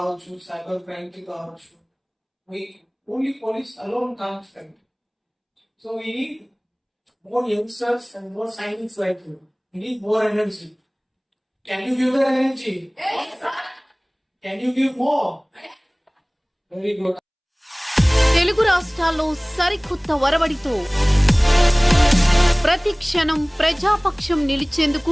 సైబర్ క్రైమ్ కి కావచ్చు, only police alone can't fight. So we need more youngsters and more sainiks like you. We need more energy. Can you give that energy? Can you give more? Very good. Telugu రాష్ట్రాల్లో సరికొత్త వరవడితో ప్రతి క్షణం ప్రజాపక్షం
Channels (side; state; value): both; identical; correlation 1.00